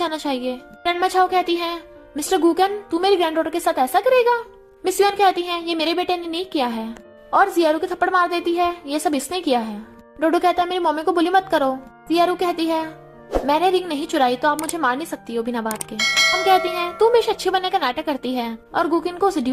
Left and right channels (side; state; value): both; identical; correlation 1.00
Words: चाहिए। ग्रैंडमा झाओ कहती है, मिस्टर गूकन तू मेरी ग्रैंडडॉटर के साथ ऐसा करेगा। मिस युआन कहती है, ये मेरे बेटे ने नहीं किया है, और जियारू के थप्पड़ मार देती है, ये सब इसने किया है। डोडो कहता है, मेरी मम्मी को बुली मत करो। जियारू कहती है, मैंने रिंग नहीं चुराई तो आप मुझे मार नहीं सकती हो बिना बात के। हम कहती हैं, तू हमेशा अच्छे बनने का नाटक करती है और गुकिन को